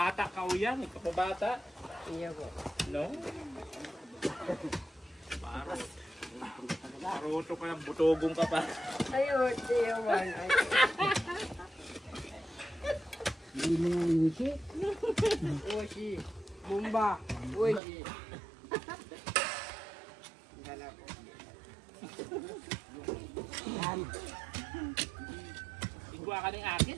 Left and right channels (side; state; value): left; drops out; at 17.8 s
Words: ka o yan. Kapabata. Iya po. No? Paruto ka lang, butogong ka pa. Ayun, tiyawan. Hindi mo nga nisi. Oshi. Bumba. Oshi. Dala po. Yan. Igwa ka ng akin